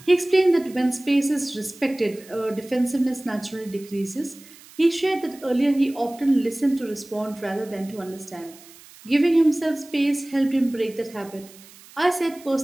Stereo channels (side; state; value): right; noise; hiss, 22 dB below the sound